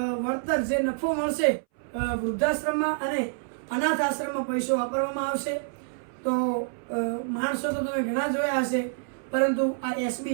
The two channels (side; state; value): left; silent; 60 dB below the other